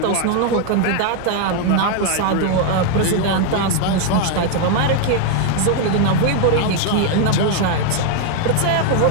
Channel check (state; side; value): different; both; correlation 0.00